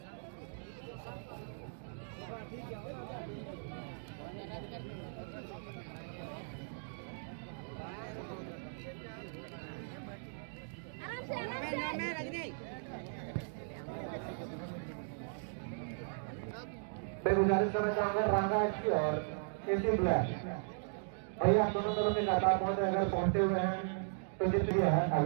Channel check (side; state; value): left; silent; digital silence